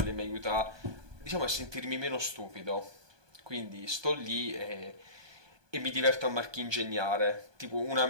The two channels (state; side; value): late; left; 1.2 ms